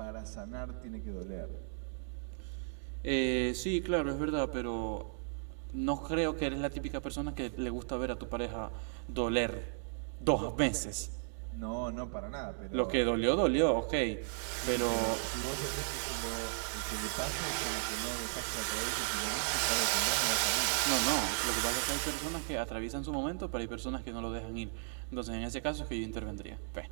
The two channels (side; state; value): left; silent; digital silence